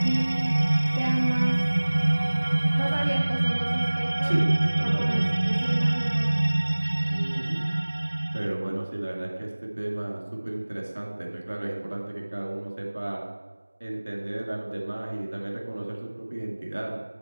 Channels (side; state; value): both; inverted; correlation -1.00